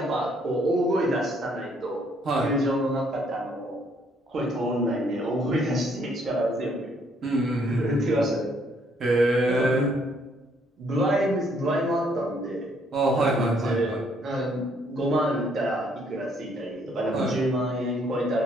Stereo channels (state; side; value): normal; both; correlation 0.67